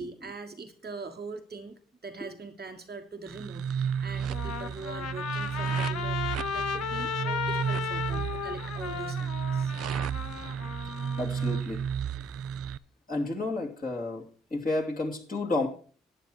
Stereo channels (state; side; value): normal; both; correlation 0.63